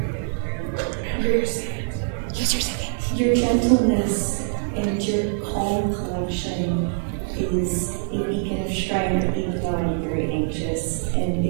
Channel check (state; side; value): silent; left; 61 dB below the other